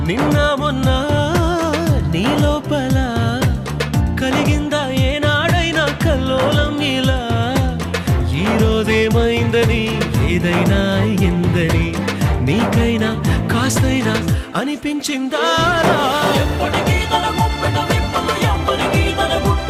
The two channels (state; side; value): identical; both; correlation 1.00